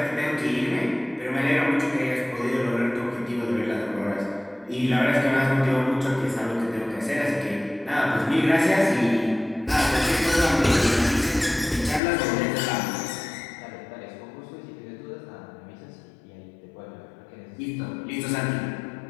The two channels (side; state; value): right; drops out; at 12.0 s